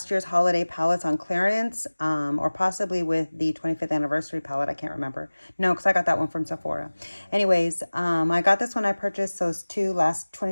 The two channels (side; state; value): both; inverted; correlation -1.00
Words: holiday palettes on clearance, or possibly with the 25th anniversary palette. I can't remember. No, because I got that one from Sephora. Anyways, I got this when I purchased those two last